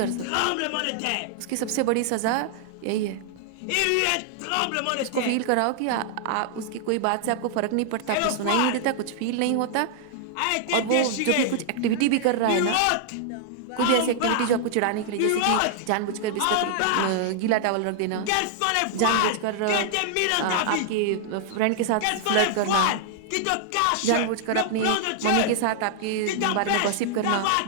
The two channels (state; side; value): different; both; correlation -0.01